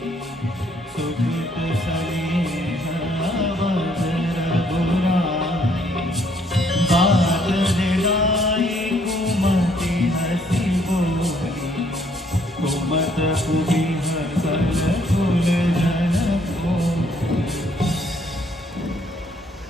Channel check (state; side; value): normal; both; correlation 0.66